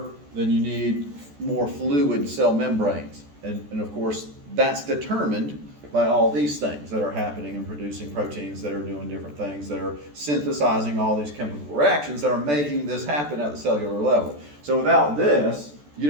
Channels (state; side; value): late; left; 14 ms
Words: then you need more fluid cell membranes. And of course, that's determined by all these things that are happening and producing proteins that are doing different things, that are synthesizing all these chemical reactions that are making this happen at the cellular level. So without this, you